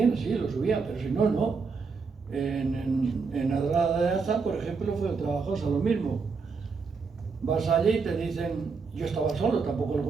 así, lo subían, pero si no, no. En Adrada de Aza, por ejemplo, fue trabajoso lo mismo. Vas allí y te dicen, yo estaba solo, tampoco lo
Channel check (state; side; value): quieter; left; 4.9 dB